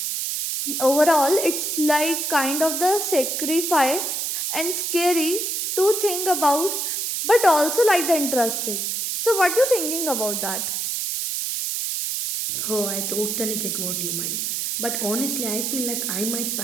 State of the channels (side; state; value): right; noise; hiss, 1 dB below the sound